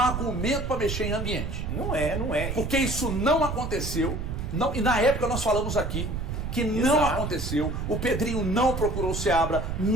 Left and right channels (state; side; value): noise; right; rumble, 4 dB below the sound